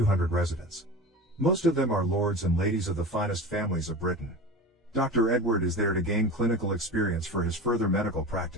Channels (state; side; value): normal; both; correlation 0.31